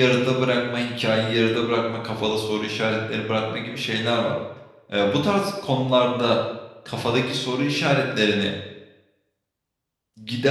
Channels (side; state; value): both; identical; correlation 1.00